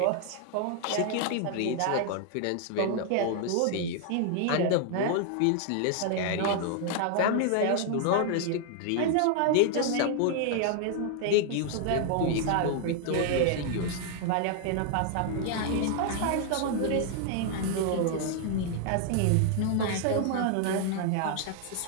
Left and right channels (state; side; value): different; both; correlation 0.00